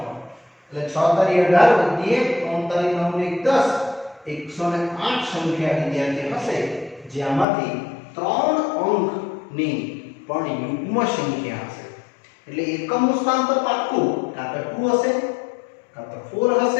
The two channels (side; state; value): right; drops out; at 7.5 s